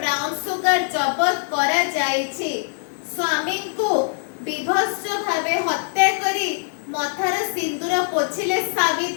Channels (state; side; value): silent; right; digital silence